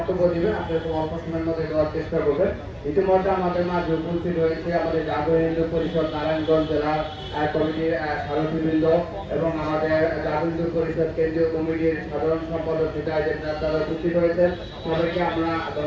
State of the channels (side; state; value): both; identical; correlation 1.00